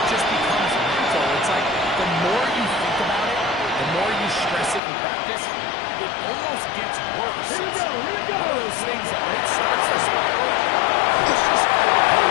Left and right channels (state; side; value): drops out; right; at 4.8 s